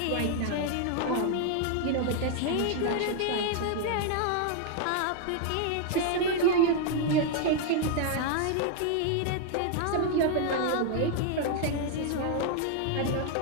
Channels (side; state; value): both; different; correlation 0.00